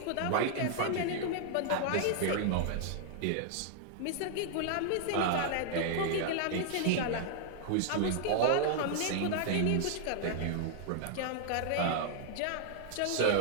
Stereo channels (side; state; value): both; different; correlation -0.01